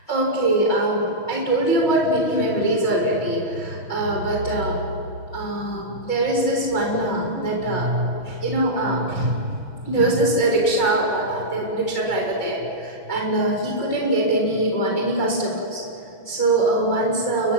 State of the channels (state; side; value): late; right; 6.1 ms